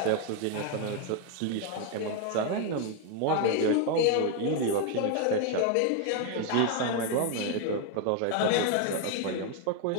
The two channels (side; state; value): both; different; correlation 0.01